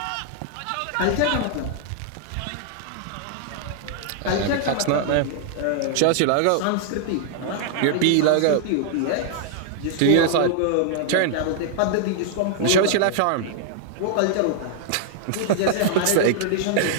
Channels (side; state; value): both; different; correlation -0.01